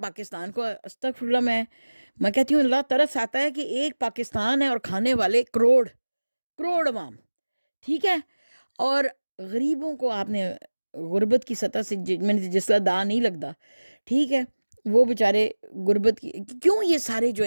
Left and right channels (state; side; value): inverted; both; correlation -1.00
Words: پاکستان کو. استغفر اللہ, میں کہتی ہوں اللہ ترس آتا ہے کہ ایک پاکستان ہے اور کھانے والے کروڑ عوام. ٹھیک ہے. اور غریبوں کو آپ نے غربت کی سطح سے میں نے جس کا دا نہیں لگتا, ٹھیک ہے, وہ بیچارے غربت کی کیوں یہ سارے جو